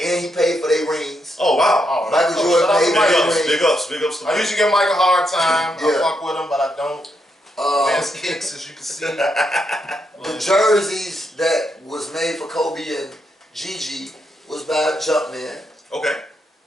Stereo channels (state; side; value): normal; both; correlation 0.80